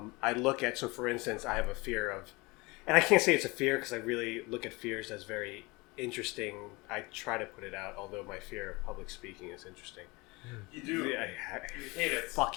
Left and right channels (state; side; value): quieter; right; 24.6 dB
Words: look at, so for instance, I have a fear of, and I can't say it's a fear because I really look at fears as very interesting. I try to put it out, although my fear of public speaking is interesting. You do. I You hate it.